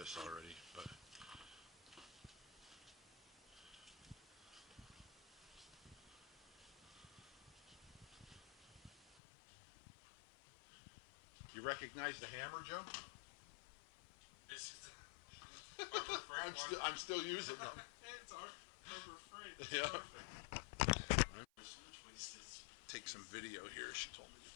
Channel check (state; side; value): drops out; right; at 9.2 s